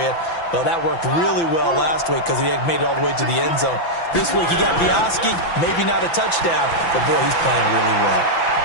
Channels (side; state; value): right; late; 5.9 ms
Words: Well, that worked really well last week because he had made it all the way to the end zone. This week he got the Oski, maybe not a touchdown, but boy, he's playing really well.